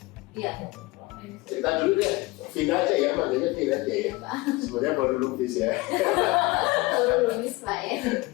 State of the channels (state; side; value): quieter; right; 21.9 dB